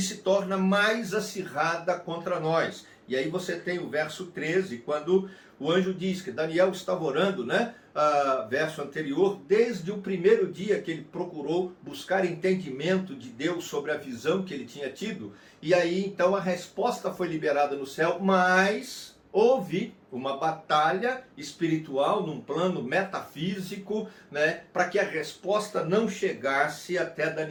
se torna mais acirrada contra nós. E aí você tem o verso 13, quando o anjo diz que Daniel estava orando, né? Verso anterior, desde o primeiro dia que ele procurou buscar entendimento de Deus sobre a visão que ele tinha tido. E aí então a resposta foi liberada no céu, mas houve uma batalha espiritual num plano metafísico, né, para que a resposta não chegasse até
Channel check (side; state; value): both; identical; correlation 1.00